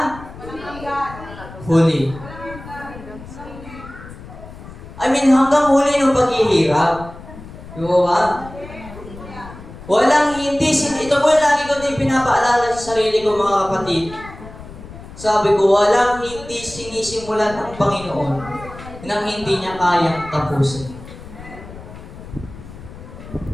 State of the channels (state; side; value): noise; left; rumble, 15 dB below the sound